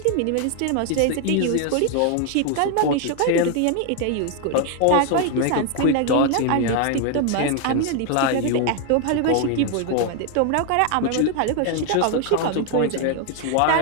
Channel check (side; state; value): both; different; correlation 0.00